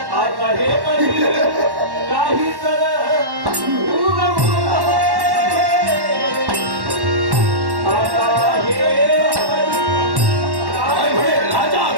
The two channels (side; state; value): left; late; 1.1 ms